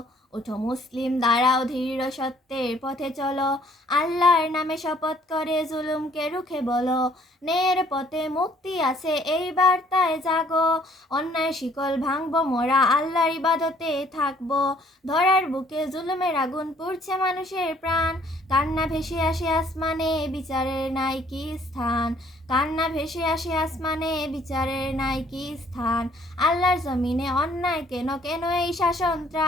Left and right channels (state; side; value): normal; both; correlation 0.61